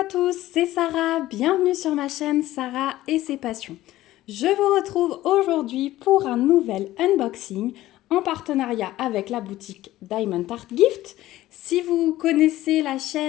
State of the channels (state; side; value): quieter; right; 15.5 dB